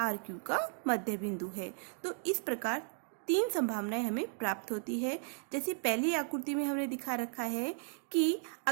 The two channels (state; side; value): silent; left; 54 dB below the other